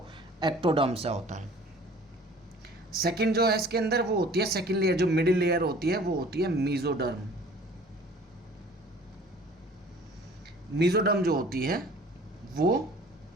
एक्टोडर्म से होता है। सेकंड जो है इसके अंदर वो होती है सेकंड लेयर, जो मिडिल लेयर होती है वो होती है मेसोडर्म। मेसोडर्म जो होती है वो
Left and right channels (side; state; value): both; normal; correlation 0.49